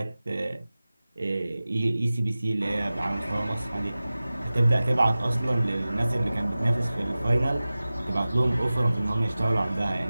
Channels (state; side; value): inverted; both; correlation -0.97